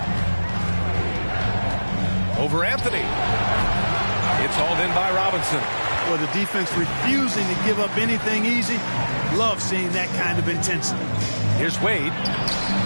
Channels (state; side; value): inverted; both; correlation -1.00